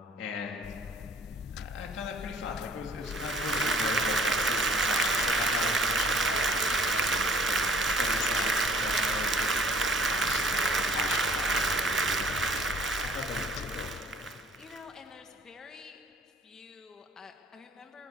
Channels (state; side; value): normal; both; correlation 0.54